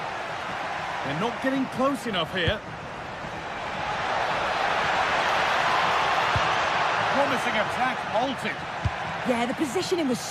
They're not getting close enough here. Promising attack halted. Yeah, the positioning was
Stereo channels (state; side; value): identical; both; correlation 1.00